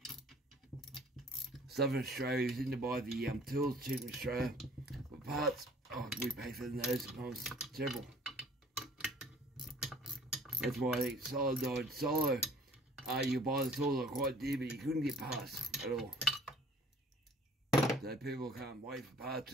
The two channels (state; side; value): normal; both; correlation 0.52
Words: Southern Australia is in to buy the tools cheap in Australia. But parts, oh, we pay for those sometimes several. That's why I think Solo died. Solo, you buy the tools are quite dear, but you couldn't get parts at all. So people can't wait for parts.